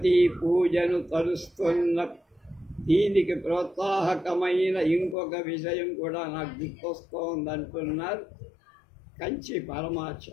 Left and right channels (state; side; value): drops out; right; at 5.2 s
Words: పూజను తరుస్తున్న. దీనికి ప్రోత్సాహకమైన ఇంకొక విషయం కూడా నాకు గుర్తొస్తోందంటున్నారు కంచి పరమార్చ.